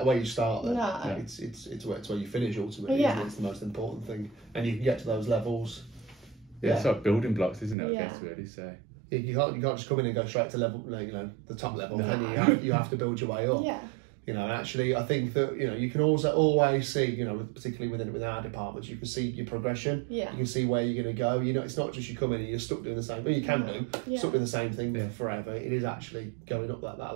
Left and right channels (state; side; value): drops out; left; at 7.8 s